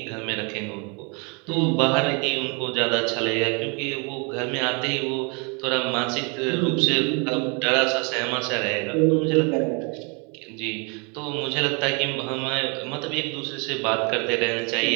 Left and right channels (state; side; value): quieter; left; 32.8 dB